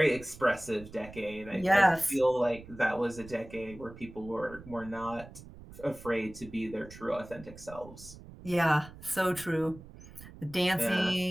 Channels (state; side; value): noise; right; rumble, 17 dB below the sound